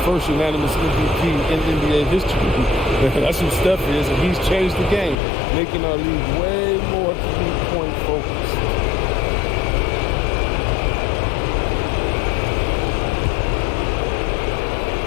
first unanimous MVP in NBA history. That's who Steph is, and he's changed the game, making our league way more three-point focused.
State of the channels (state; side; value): drops out; right; at 5.2 s